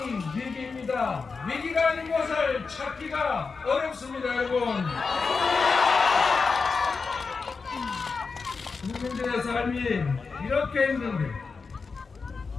위기입니다. 위기가 아닌 것을 찾기가 어렵습니다, 여러분. 국민들의 삶이 이렇게 힘든데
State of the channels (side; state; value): right; quieter; 4.7 dB